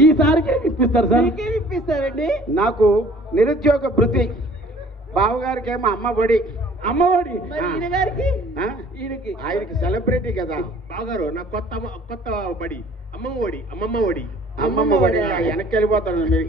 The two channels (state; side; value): normal; both; correlation 0.53